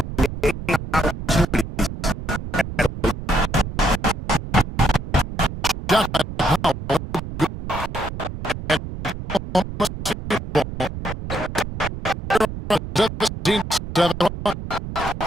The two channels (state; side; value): noise; right; rumble, 8 dB below the sound